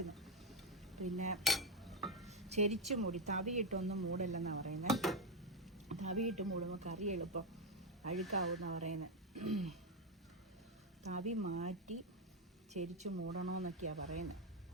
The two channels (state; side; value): normal; both; correlation 0.06